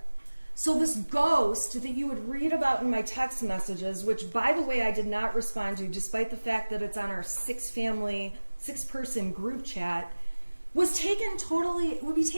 So this ghost that you would read about in my text messages, which by the way I did not respond to despite the fact that it's on our 6-person group chat, would be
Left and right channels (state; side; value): inverted; both; correlation -1.00